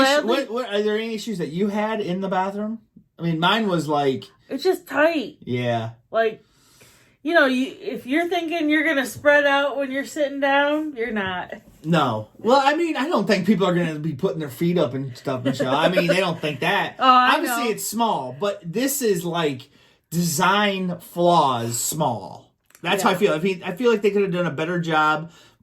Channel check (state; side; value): identical; both; correlation 1.00